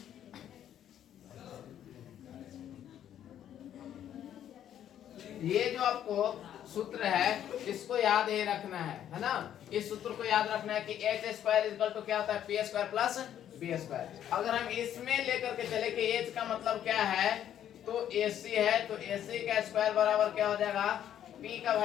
ये जो आपको सूत्र है इसको याद ही रखना है ना? इस सूत्र को याद रखना है कि एच स्क्वायर इक्वल टू क्या होता है? P square plus B square. अगर हम इसमें लेकर के चले कि एच का मतलब क्या है, तो एसी है, तो एसी का स्क्वायर बराबर क्या हो जाएगा? पी का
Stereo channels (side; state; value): right; quieter; 10.5 dB